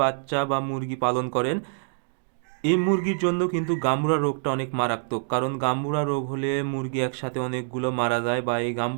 বাচ্চা বা মুরগি পালন করেন, এই মুরগির জন্য কিন্তু গাম্বুরা রোগটা অনেক মারাত্মক, কারণ গাম্বুরা রোগ হলে মুরগি একসাথে অনেকগুলো মারা যায়, বা এই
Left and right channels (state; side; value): silent; left; digital silence